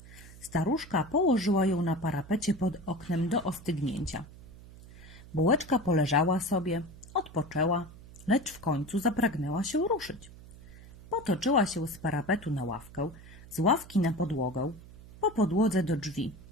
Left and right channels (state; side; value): noise; right; hum, 19 dB below the sound